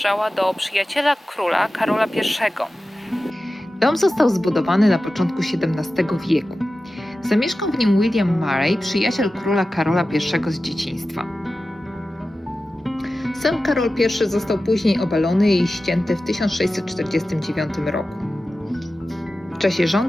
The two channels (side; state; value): both; normal; correlation 0.94